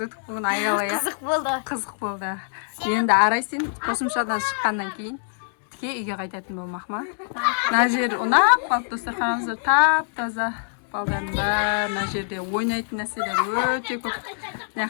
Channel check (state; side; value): silent; right; digital silence